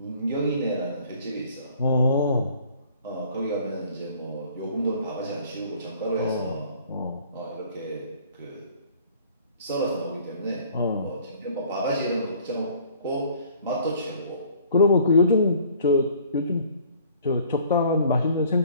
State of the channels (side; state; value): both; inverted; correlation -0.55